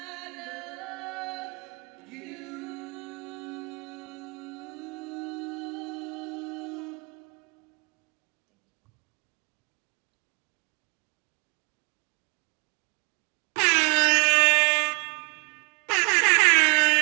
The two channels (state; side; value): quieter; left; 35.7 dB